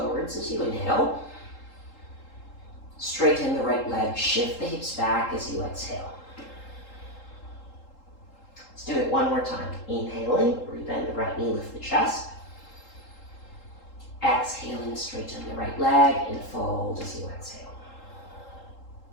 as you inhale. Straighten the right leg, shift the hips back as you exhale. Let's do it one more time. Inhaling, rebend the right knee, lift the chest. Exhaling, straighten the right leg and fold as you exhale.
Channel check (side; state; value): right; late; 3.8 ms